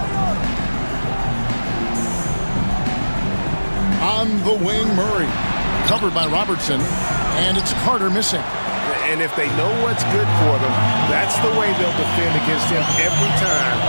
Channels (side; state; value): both; inverted; correlation -1.00